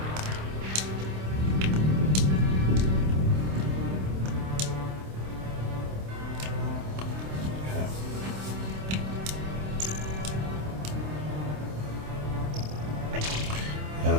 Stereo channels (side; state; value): left; late; 27 ms